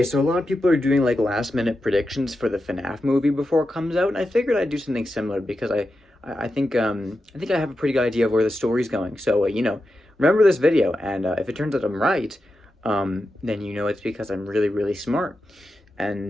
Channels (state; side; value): normal; both; correlation 0.89